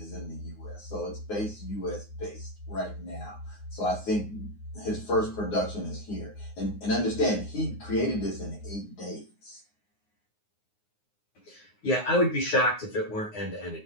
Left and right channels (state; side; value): late; right; 9.6 ms